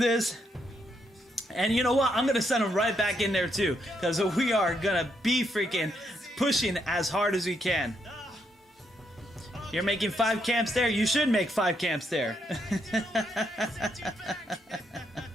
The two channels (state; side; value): normal; both; correlation 0.77